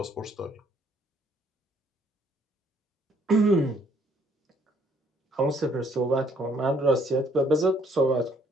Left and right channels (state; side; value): normal; both; correlation 0.65